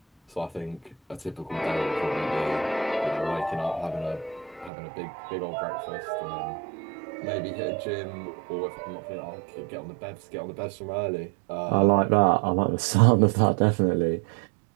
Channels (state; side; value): drops out; left; at 4.7 s